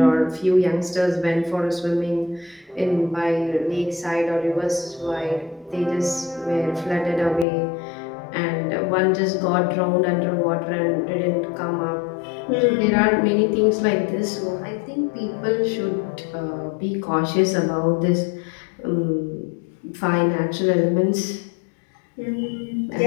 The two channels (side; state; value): right; drops out; at 7.5 s